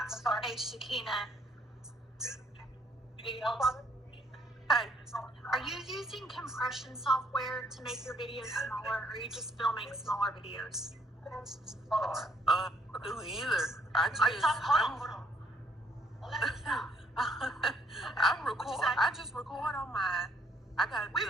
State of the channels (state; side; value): normal; both; correlation 0.67